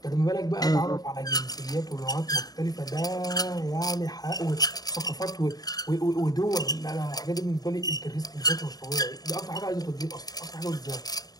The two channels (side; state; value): right; late; 0.18 ms